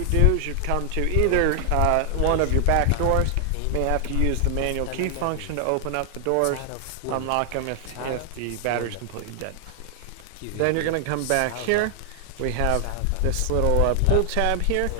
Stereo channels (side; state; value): both; different; correlation 0.00